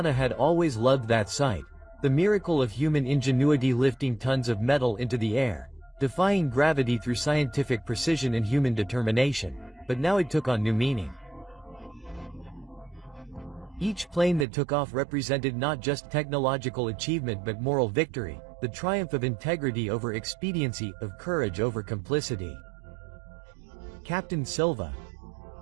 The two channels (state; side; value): drops out; left; at 14.5 s